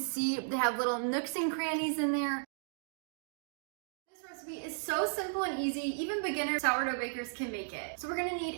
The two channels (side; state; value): left; silent; digital silence